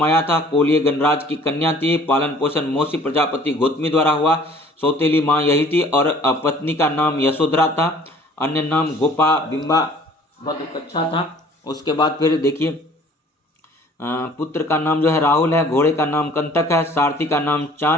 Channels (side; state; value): both; normal; correlation 0.53